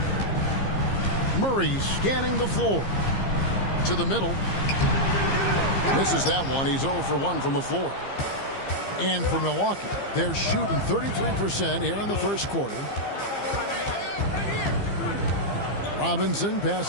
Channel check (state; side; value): late; right; 15 ms